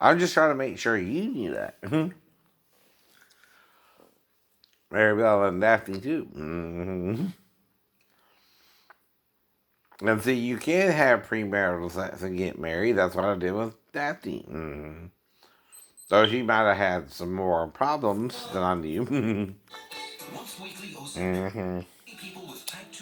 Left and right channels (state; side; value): identical; both; correlation 1.00